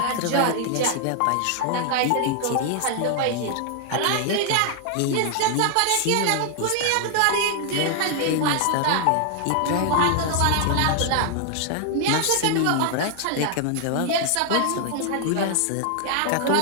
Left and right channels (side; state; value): both; different; correlation 0.00